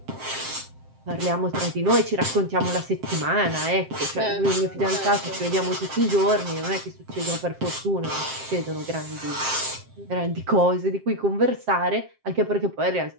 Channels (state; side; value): late; left; 7.6 ms